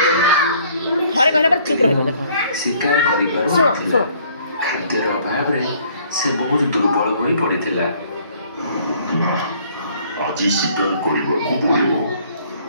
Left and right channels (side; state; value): both; inverted; correlation -0.60